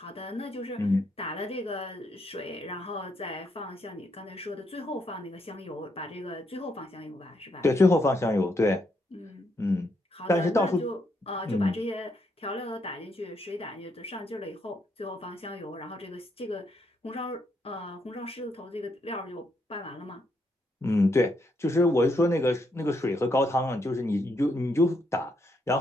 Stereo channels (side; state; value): both; normal; correlation 0.76